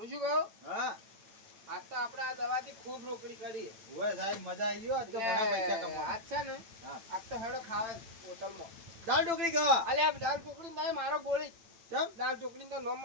શું કહું હા આજ તો આપણે આ દવાથી ખૂબ રોકડી કરી ઓય સાહેબ મજા આવી ગયો આજ તો ઘણા પૈસા કમાવા આજ છે ને હા. આજ તો હેડો ખાવા હોટલમાં દાળ ઢોકળી ખાવા અલ્યા દાળ ઢોકળી નહીં મારો ગોળી કેમ દાળ ઢોકળી તો નો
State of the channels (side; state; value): left; late; 8.9 ms